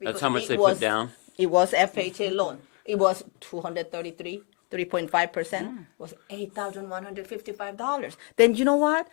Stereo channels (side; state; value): right; quieter; 36.3 dB